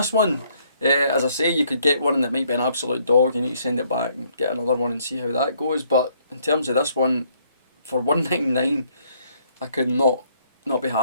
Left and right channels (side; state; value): both; inverted; correlation -0.67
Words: one, as I say, you could get one that might be an absolute dog. You need to send it back and get another one and see how that goes. But in terms of this one, for £199, I could not be